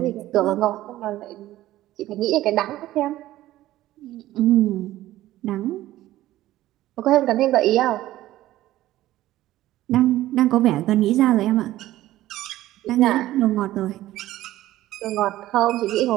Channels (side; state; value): left; quieter; 15.2 dB